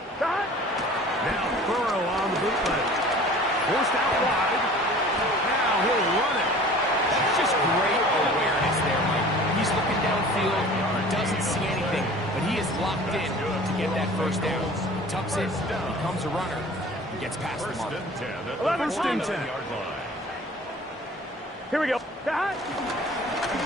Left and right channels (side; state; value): both; normal; correlation 0.45